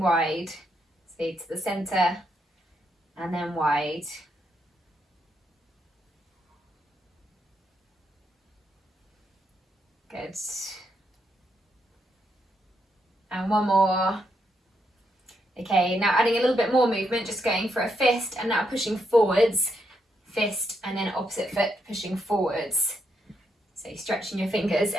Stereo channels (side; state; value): both; normal; correlation 0.79